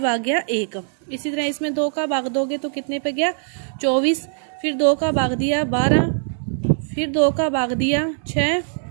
गया 1। इसी तरह इसमें 2 का भाग दोगे तो कितने पे गया 24, फिर 2 का भाग दिया 12, फिर 2 का भाग दिया 6,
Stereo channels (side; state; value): left; silent; digital silence